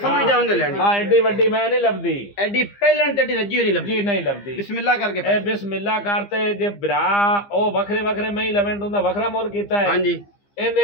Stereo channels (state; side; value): late; right; 15 ms